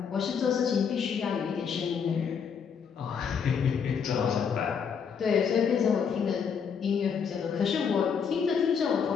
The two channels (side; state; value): right; quieter; 6.7 dB